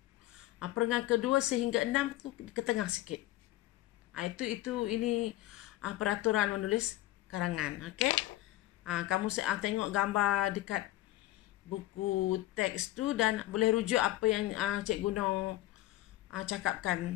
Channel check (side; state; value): right; quieter; 16.1 dB